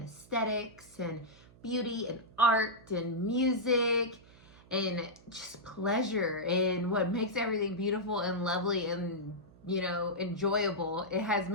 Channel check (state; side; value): noise; right; hum, 24 dB below the sound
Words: aesthetics and beauty and art and music and just pleasure and what makes everything beautiful and lovely and, enjoyable. It has